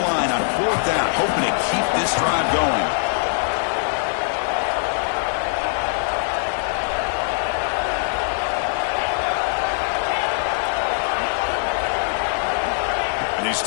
on fourth down, hoping to keep this drive going. He's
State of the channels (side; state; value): right; silent; digital silence